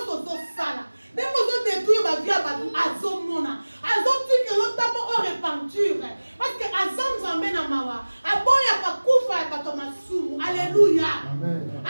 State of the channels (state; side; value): inverted; both; correlation -1.00